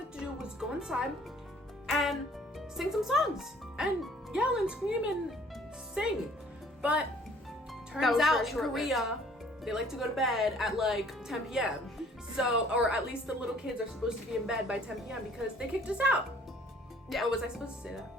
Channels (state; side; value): normal; both; correlation 0.57